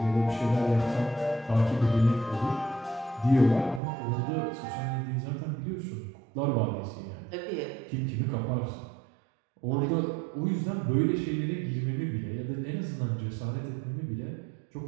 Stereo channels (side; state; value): left; drops out; at 3.8 s